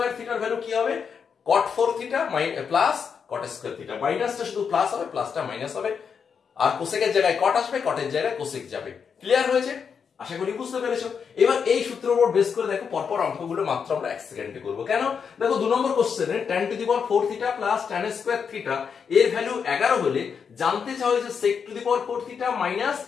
থিটার ভ্যালু কি হবে? cot 4 theta plus cot square theta. মাইনাসটা শুধু প্লাস হবে, প্লাসটা মাইনাস হবে, আর কোসেকের জায়গায় কট আসবে, কটের জায়গায় কোসেক যাবে। ক্লিয়ার হয়েছে? আশা করি বুঝতে পেরেছো। এবার এই সূত্রের উপর বেস করে দেখো পরপর অঙ্কগুলো মাত্র আমরা 1 সেকেন্ডে করব। কেন? দেখো 2 নম্বর কোশ্চেনে tan to the power 4 theta plus tan square theta এর ভ্যালু 11 হলে জানতে চাও যে sec to the power 4 theta minus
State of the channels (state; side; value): quieter; right; 6.5 dB